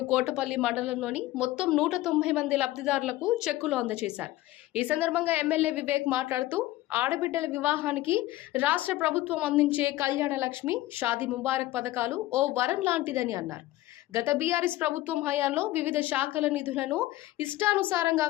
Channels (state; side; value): quieter; right; 16.6 dB